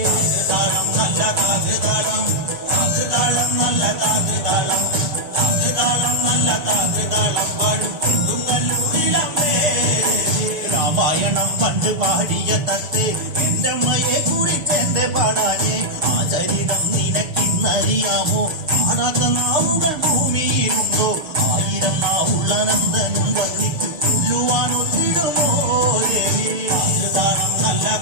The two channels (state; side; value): late; left; 6.9 ms